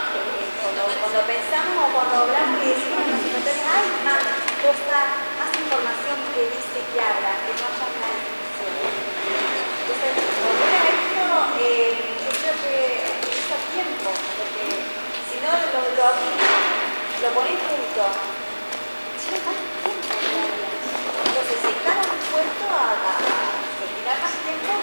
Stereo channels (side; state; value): both; inverted; correlation -1.00